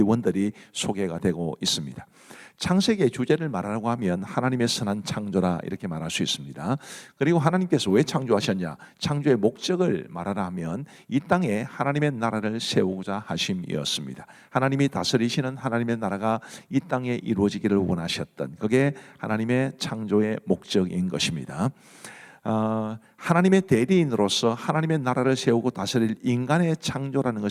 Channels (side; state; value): both; identical; correlation 1.00